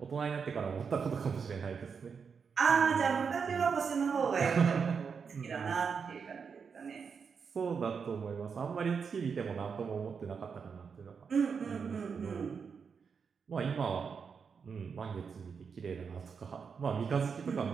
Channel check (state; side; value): quieter; left; 6.0 dB